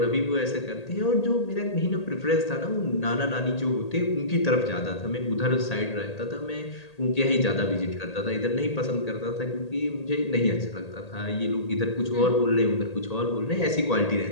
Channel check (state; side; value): late; right; 1.8 ms